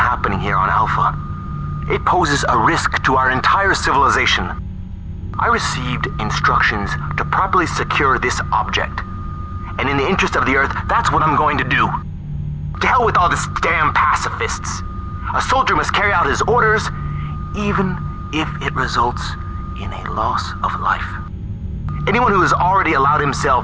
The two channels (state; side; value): identical; both; correlation 1.00